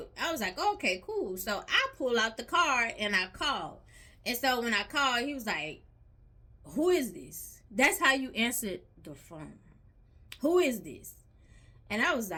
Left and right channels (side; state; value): both; identical; correlation 1.00